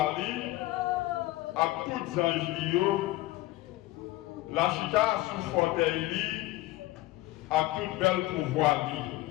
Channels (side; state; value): right; quieter; 17.5 dB